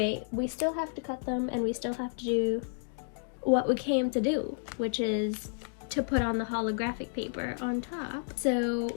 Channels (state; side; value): silent; right; digital silence